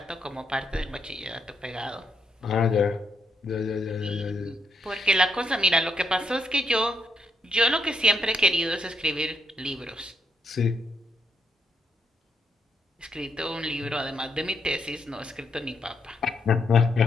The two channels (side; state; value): both; normal; correlation 0.79